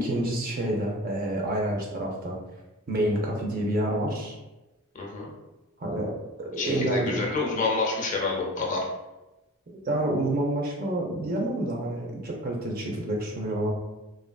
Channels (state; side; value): normal; both; correlation 0.38